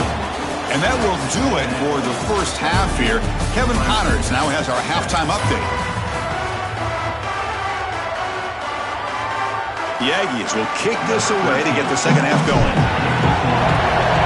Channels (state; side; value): identical; both; correlation 1.00